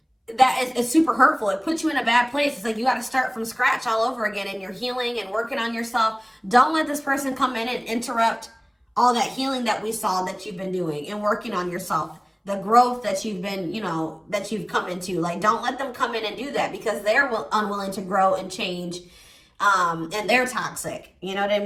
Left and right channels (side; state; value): both; identical; correlation 1.00